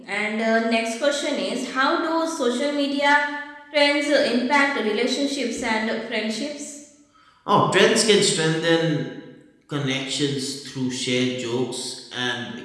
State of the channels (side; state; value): both; identical; correlation 1.00